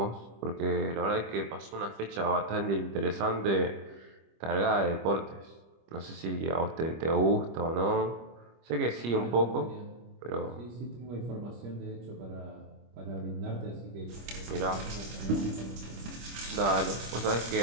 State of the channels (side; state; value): left; late; 25 ms